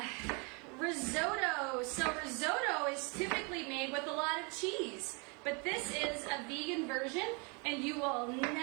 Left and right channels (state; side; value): quieter; left; 32.4 dB